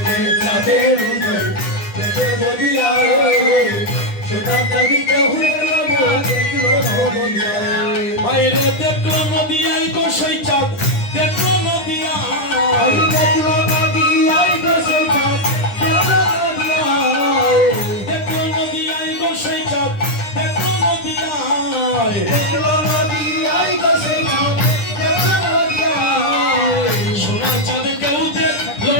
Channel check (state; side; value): late; right; 9.9 ms